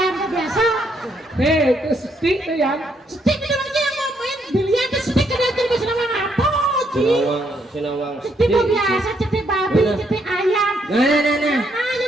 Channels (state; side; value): normal; both; correlation 0.73